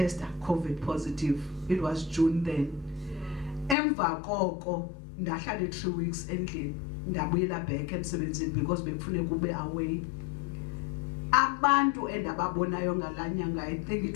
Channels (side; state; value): right; drops out; at 3.8 s